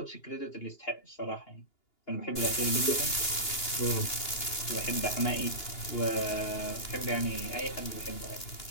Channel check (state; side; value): late; right; 2.8 ms